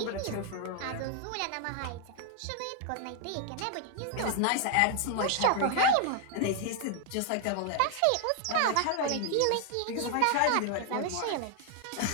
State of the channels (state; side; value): different; both; correlation 0.00